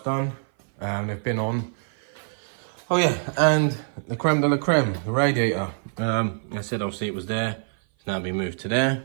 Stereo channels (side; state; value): left; silent; 56 dB below the other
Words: and they've been on. Oh yeah, and the creme de la creme, the radiator. I said obviously it was there, it's now been moved to there,